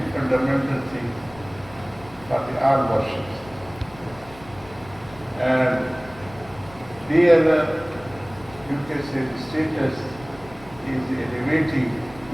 fundamental thing for the all worships. And there, you can say the status is elevating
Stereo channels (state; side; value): noise; left; rumble, 20 dB below the sound